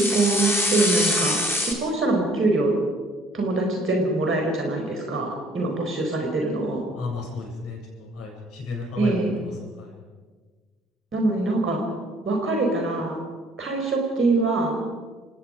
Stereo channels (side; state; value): both; normal; correlation 0.59